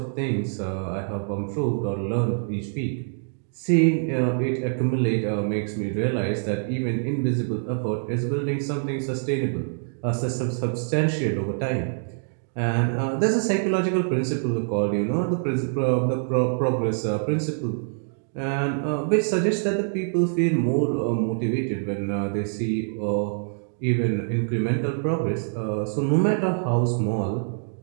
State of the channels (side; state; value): left; silent; digital silence